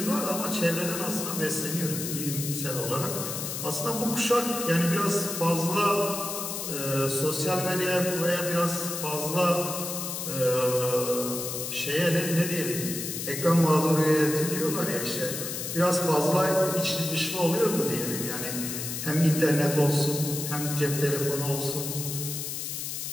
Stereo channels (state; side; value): noise; left; hiss, 5 dB below the sound